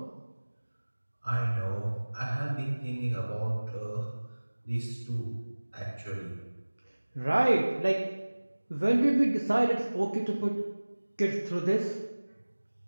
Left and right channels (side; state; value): both; inverted; correlation -1.00